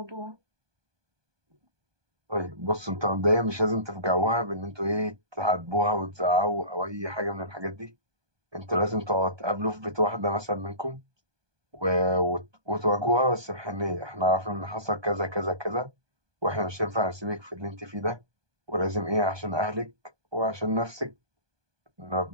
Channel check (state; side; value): late; left; 1.2 ms